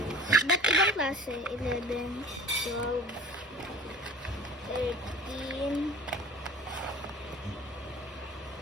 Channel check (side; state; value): both; normal; correlation 0.42